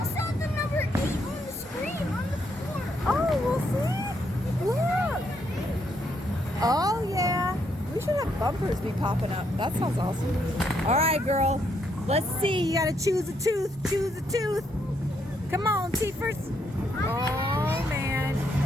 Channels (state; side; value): normal; both; correlation 0.75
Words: saw the number 8 on the screen on the floor. Oh, we'll see. Look. Oh, yeah. We should have bumpers be popping up. That sounds awesome. All right, girl. Let's see. You got to choose a tooth. Choose a tooth. Come on, teethers. Oh, man.